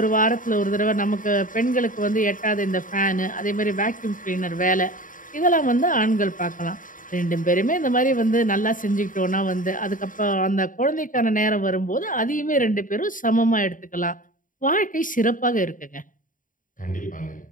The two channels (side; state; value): right; late; 0.39 ms